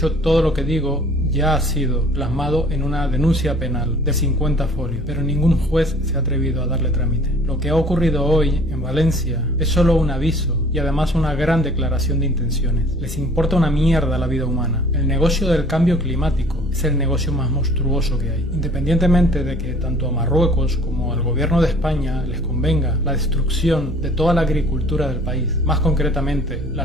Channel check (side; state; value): both; normal; correlation 0.52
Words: todo lo que digo ya ha sido plasmado en una denuncia penal de 50 folios, pero ningún juez se ha atrevido a darle trámite. Lo que ha ocurrido hoy en Valencia es solo un aviso y además una gran declaración de intenciones. Les importa una mierda la vida humana. El negocio del cambio climático es el negocio más monstruoso que hay. Independientemente de que tanto a Marruecos como al gobierno de España les convenga la destrucción de toda la agricultura del país, más concretamente